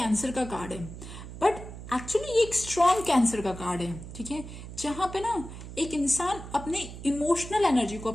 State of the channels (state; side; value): noise; right; hum, 12 dB below the sound